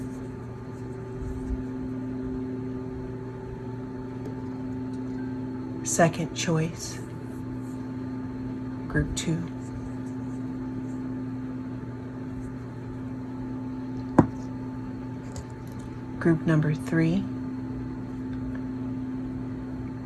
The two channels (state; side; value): identical; both; correlation 1.00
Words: second choice, group 2, group number 3,